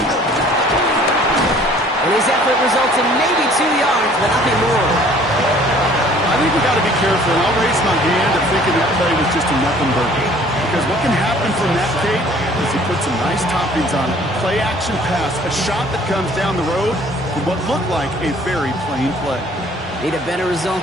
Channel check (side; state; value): both; normal; correlation 0.54